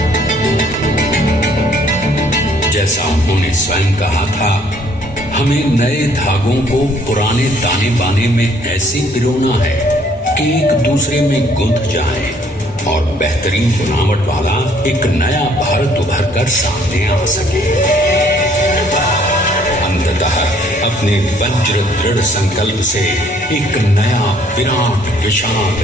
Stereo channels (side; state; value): both; normal; correlation 0.62